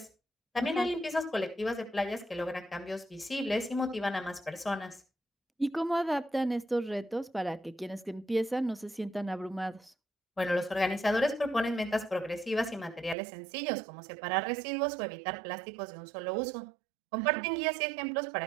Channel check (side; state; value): left; drops out; at 13.2 s